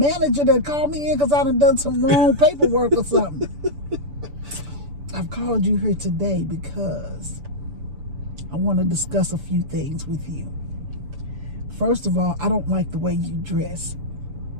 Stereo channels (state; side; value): late; left; 6.9 ms